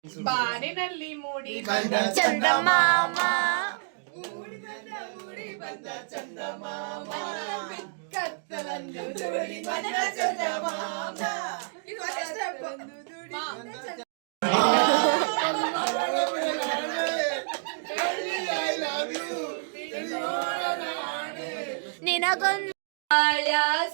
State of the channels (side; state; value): left; silent; digital silence